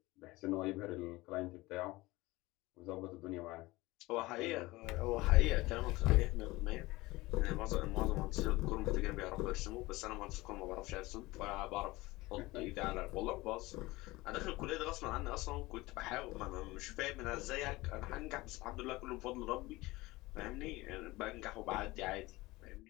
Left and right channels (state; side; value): quieter; right; 20.4 dB